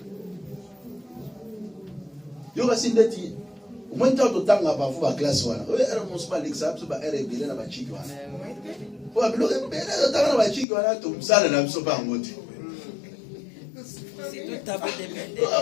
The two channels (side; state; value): right; drops out; at 10.7 s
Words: Yo va sindeti. Au moins tant de temps là-bas, vous va classe voilà. Oui, elle ne pas l'examen, c'est pas elle bien là-bas chic voilà. Pour appeler le bien là-bas chic voilà, tout ça là, ne sont pas en mode. C'est tout à fait dépendant.